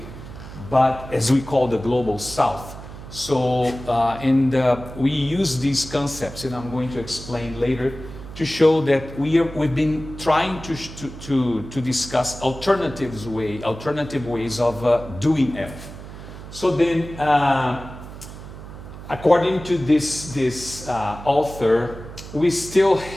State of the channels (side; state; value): right; noise; hum, 13 dB below the sound